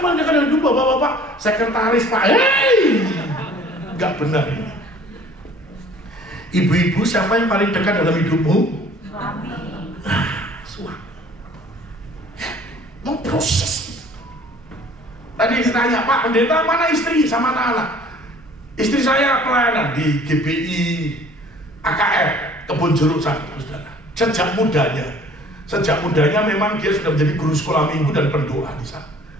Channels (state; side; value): normal; both; correlation 0.52